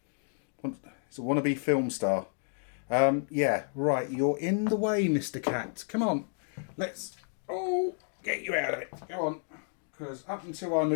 It's a wannabe film star. Yeah, right, you're in the way, Mr. Cat. Come on, let's, get you out of it. Go on. Because up until I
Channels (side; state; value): right; silent; 57 dB below the other